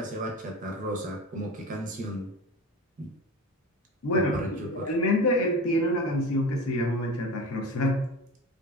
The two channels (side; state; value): both; normal; correlation 0.31